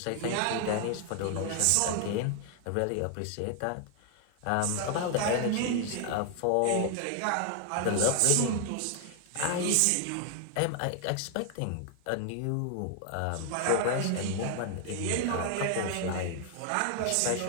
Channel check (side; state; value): both; different; correlation 0.00